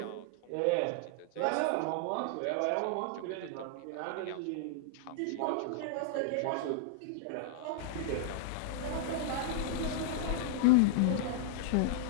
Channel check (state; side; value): different; both; correlation -0.01